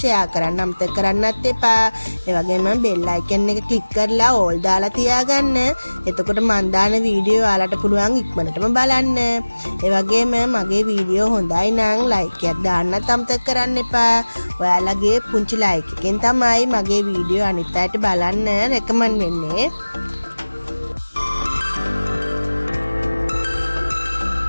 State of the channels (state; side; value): inverted; both; correlation -1.00